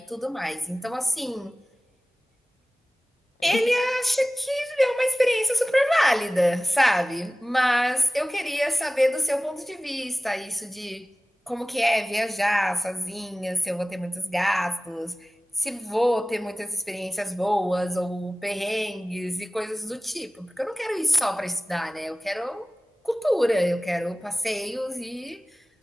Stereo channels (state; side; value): normal; both; correlation 0.97